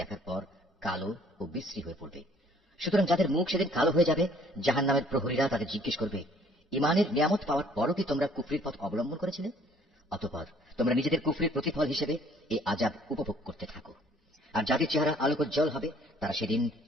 দেখার পর কালো ও বিশ্রী হয়ে পড়বে। সুতরাং যাদের মুখ সেদিন কালো হয়ে যাবে, জাহান্নামের প্রহরীরা তাদের জিজ্ঞেস করবে, ঈমানের নিয়ামত পাওয়ার পরও কি তোমরা কুফরির পথ অবলম্বন করেছিলে? অতঃপর তোমরা নিজেদের কুফরির প্রতিফল হিসেবে এই আযাব উপভোগ করতে থাকো। আর যাদের চেহারা আলোকোজ্জ্বল হবে তারা সেদিন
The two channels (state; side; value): normal; both; correlation 0.59